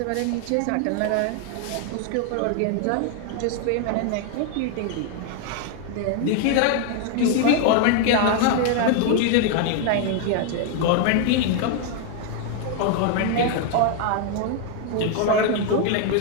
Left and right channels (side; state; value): both; different; correlation 0.00